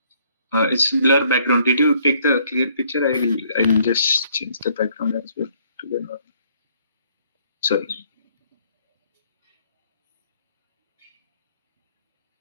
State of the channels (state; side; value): inverted; both; correlation -0.65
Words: It's blur background. Did you take the clear picture? I'll just change the background as well to the normal. Sorry.